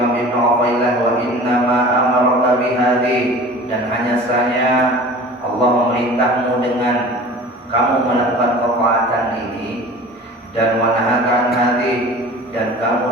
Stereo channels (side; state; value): both; normal; correlation 0.41